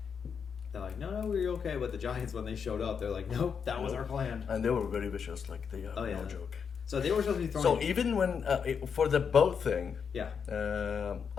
no, we're okay. But the giants, when they showed up, they're like, nope, that was our plan. And they were very vicious, like they have no joke. So they were supposed to be throwing. So even when for the boat thing, I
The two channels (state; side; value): quieter; right; 6.6 dB